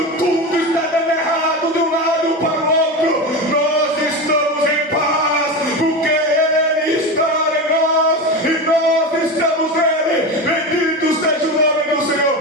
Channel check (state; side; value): normal; both; correlation 0.21